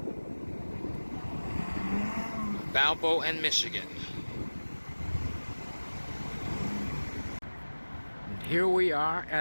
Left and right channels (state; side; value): inverted; both; correlation -1.00